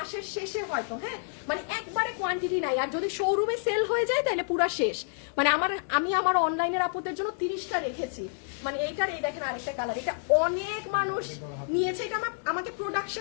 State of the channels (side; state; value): right; silent; 59 dB below the other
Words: শেষে হয়তো, হ্যাঁ, মানে একবারে কোয়ান্টিটি নাই। আর যদি শোরুমে সেল হয়ে যায় তাহলে পুরা শেষ। মানে আমি আমার অনলাইনের আপুদের জন্য 30টা রেখেছি। মানে এইটার, এই দেখেন আরেকটা কালার, এটা অনেক মানুষ নিয়েছে, এটা আমাকে